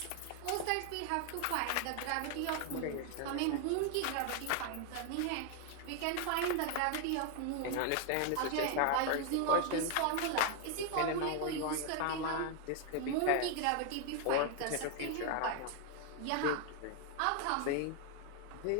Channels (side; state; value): both; different; correlation 0.01